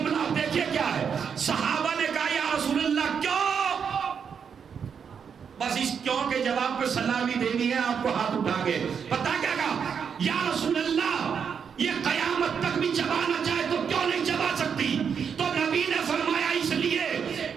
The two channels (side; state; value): left; quieter; 6.9 dB